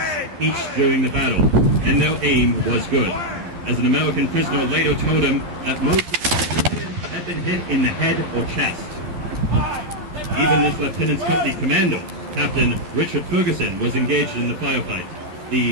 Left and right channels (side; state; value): left; late; 12 ms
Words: each during the battle, and their aim was good. As an American prisoner later told him that most of the men had been hit in the head or chest. Even this lieutenant's company commander, Captain Richard Ferguson, was engaged in the firefight.